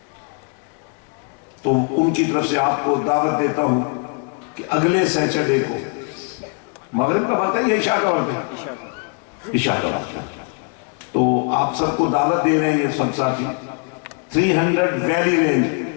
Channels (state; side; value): quieter; right; 36.7 dB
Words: تو ان کی طرف سے آپ کو دعوت دیتا ہوں کہ اگلے سیٹرڈے کو مغرب کا وقت ہے یا عشاء کا وقت ہے؟ عشاء کا عشاء کا وقت ہے، تو آپ سب کو دعوت دے رہے ہیں یہ سب ساتھی 300 ویلی رینج